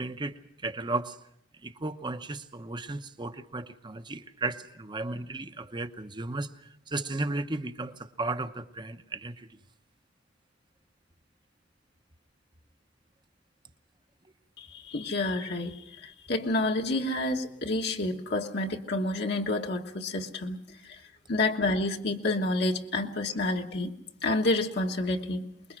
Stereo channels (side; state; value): both; normal; correlation 0.36